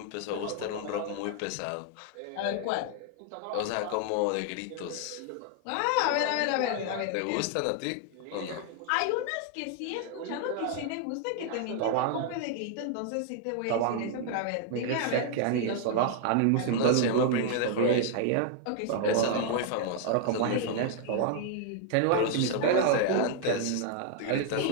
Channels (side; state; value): both; different; correlation 0.00